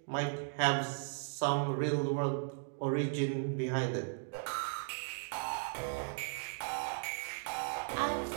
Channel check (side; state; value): left; silent; digital silence